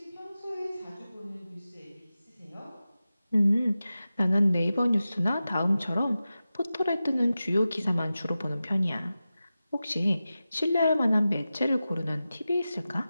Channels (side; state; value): both; inverted; correlation -0.94